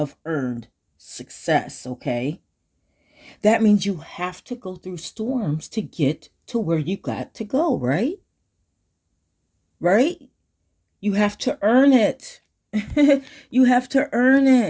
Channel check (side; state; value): both; identical; correlation 1.00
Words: earned success, okay? That means you have to go through storms to get to where you got to go, right? Right? You have to earn it. You have to earn